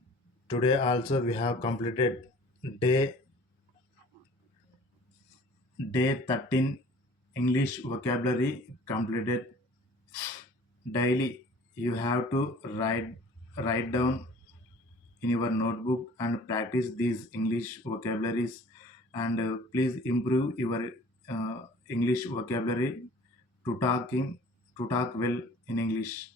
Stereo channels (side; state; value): both; normal; correlation 0.49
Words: Today also we have completed day 13 English vocabulary completed. Daily you have to write down in your notebook and practice these English vocabularies, and please improve your English vocabulary to talk well in English.